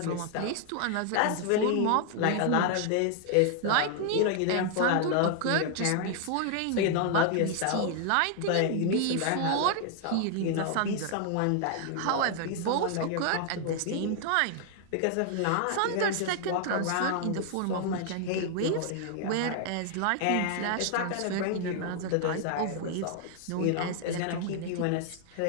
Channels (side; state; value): both; different; correlation 0.00